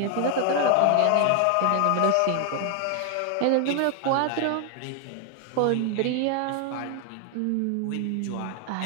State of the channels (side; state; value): both; different; correlation 0.00